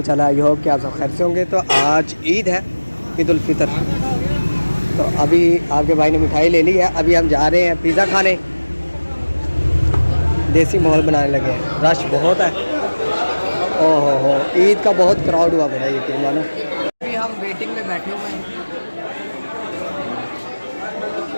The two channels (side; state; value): both; inverted; correlation -1.00